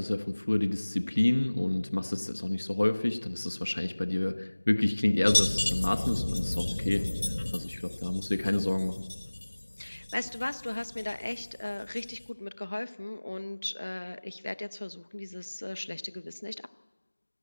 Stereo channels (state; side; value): inverted; both; correlation -1.00